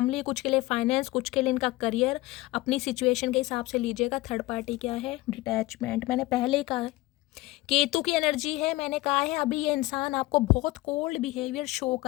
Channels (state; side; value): quieter; right; 19.3 dB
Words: कुछ के लिए फाइनेंस, कुछ के लिए इनका करियर। अपनी सिचुएशन के हिसाब से लीजिएगा। थर्ड पार्टी क्या है, डिटैचमेंट। मैंने पहले ही कहा केतु की एनर्जी है, मैंने कहा है अभी ये इंसान आपको बहुत कोल्ड बिहेवियर शो